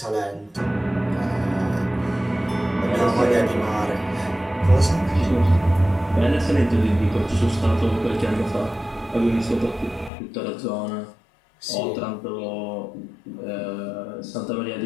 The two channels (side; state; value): right; drops out; at 10.1 s